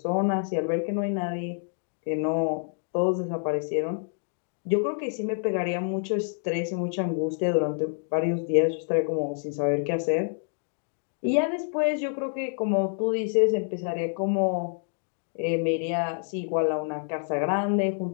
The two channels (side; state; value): right; silent; digital silence